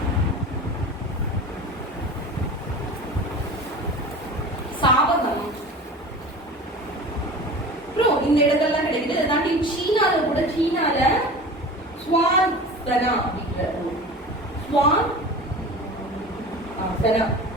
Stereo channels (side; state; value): both; normal; correlation 0.36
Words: சாவகம், அப்புறம் இந்த இடங்கள்லாம் கிடைக்குது. இதை தாண்டி சீனால கூட சீனால ஸ்வான் சனா அப்படிங்கிற